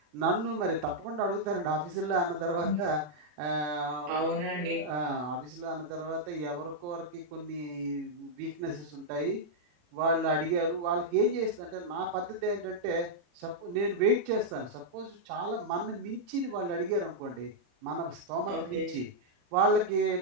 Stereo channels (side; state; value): left; late; 40 ms